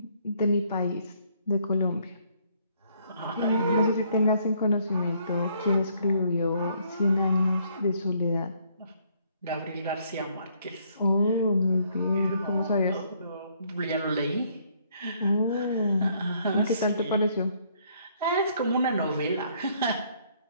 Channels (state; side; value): inverted; both; correlation -0.67